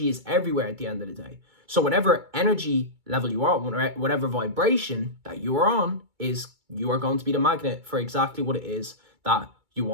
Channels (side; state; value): left; late; 2.3 ms